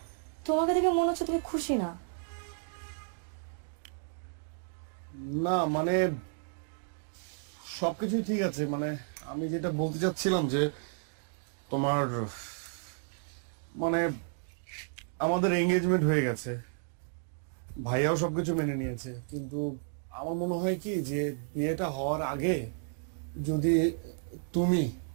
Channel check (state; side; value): silent; left; digital silence